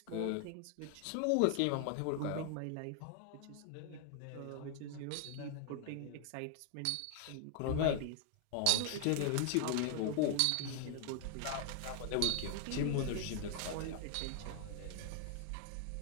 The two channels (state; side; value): different; both; correlation 0.00